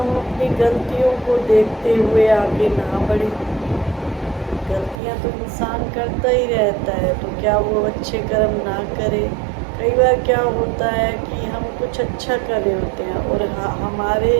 अपनी गलतियों को देखते हुए आगे ना बढ़ें? गलतियां तो इंसान करता ही रहता है, तो क्या वो अच्छे कर्म ना करे? कई बार क्या होता है कि हम कुछ अच्छा कर रहे होते हैं और हमारे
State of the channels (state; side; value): drops out; left; at 5.0 s